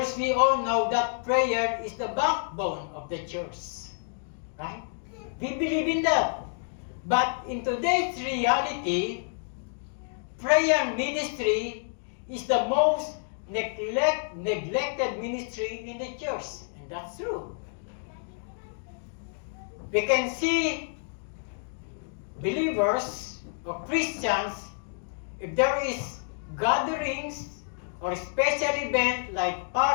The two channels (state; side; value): silent; right; digital silence